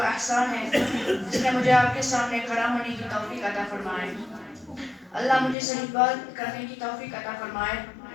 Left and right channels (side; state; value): right; drops out; at 5.6 s